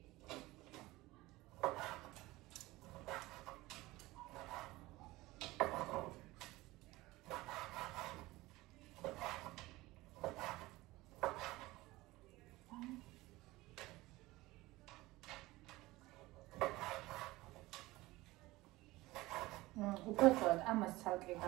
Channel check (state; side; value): quieter; left; 19.4 dB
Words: უბრალოდ ამას ცალკე